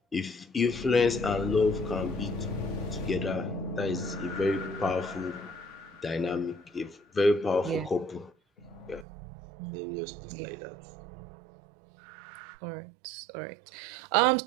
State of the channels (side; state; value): left; drops out; at 9.1 s